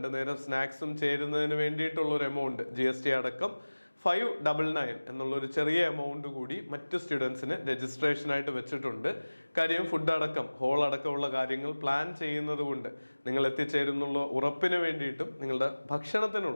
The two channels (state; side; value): inverted; both; correlation -1.00